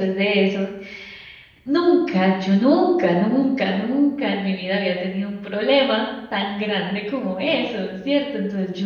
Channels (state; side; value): identical; both; correlation 1.00